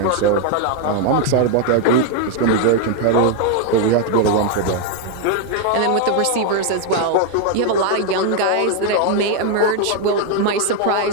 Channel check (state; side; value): different; both; correlation 0.01